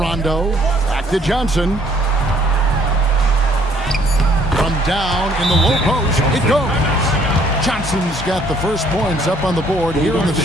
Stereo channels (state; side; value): normal; both; correlation 0.62